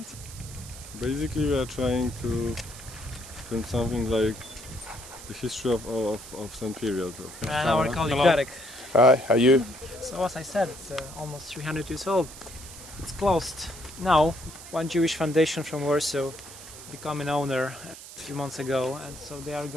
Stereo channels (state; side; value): noise; right; hiss, 15 dB below the sound